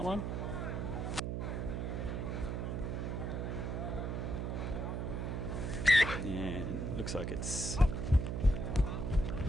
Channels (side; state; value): right; noise; hum, 2 dB below the sound